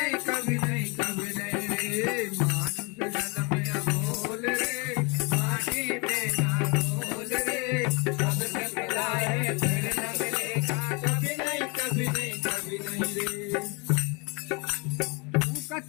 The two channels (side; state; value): right; quieter; 30.2 dB